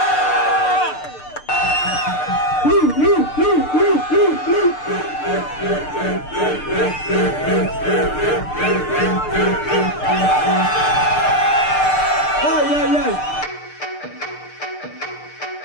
Aïe aïe aïe.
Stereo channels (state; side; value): late; right; 6.7 ms